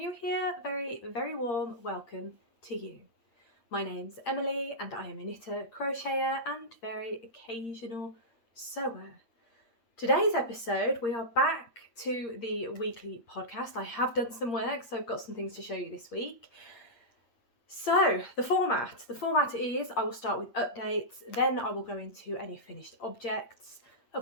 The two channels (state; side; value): late; right; 8.7 ms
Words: here, very warm welcome to you. My name's Emily and I am a knitter, crocheter and very occasional sewer. Today's episode, we are back to the weekly podcast. I have done some work, so I've got some things to show you this week. So the format is I will start with updates, then I will go into any finished objects,